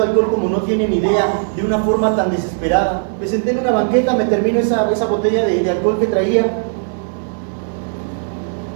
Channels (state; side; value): silent; left; digital silence